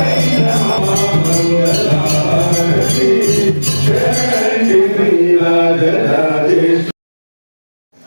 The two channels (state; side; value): inverted; both; correlation -1.00